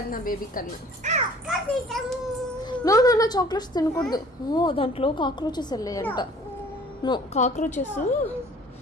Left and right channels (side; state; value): both; normal; correlation 0.51